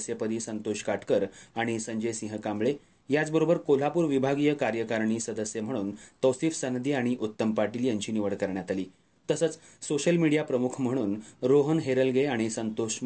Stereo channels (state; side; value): identical; both; correlation 1.00